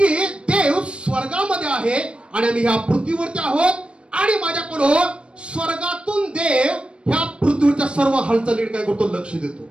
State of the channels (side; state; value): left; late; 0.058 ms